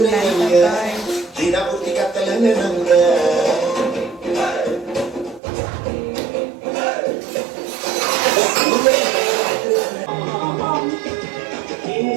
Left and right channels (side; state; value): left; drops out; at 5.4 s